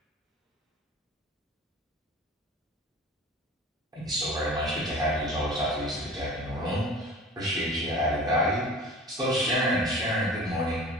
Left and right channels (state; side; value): normal; both; correlation 0.40